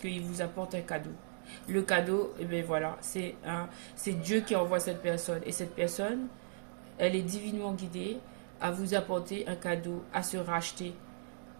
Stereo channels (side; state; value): left; silent; digital silence